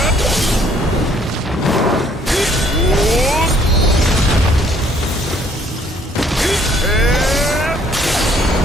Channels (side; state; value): both; normal; correlation 0.62